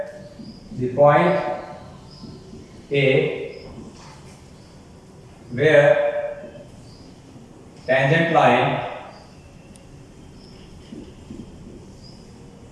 the point A where tangent line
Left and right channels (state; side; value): identical; both; correlation 1.00